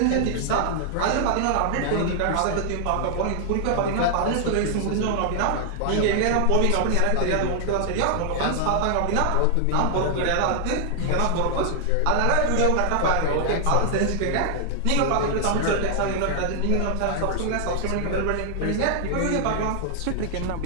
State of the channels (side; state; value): both; different; correlation 0.00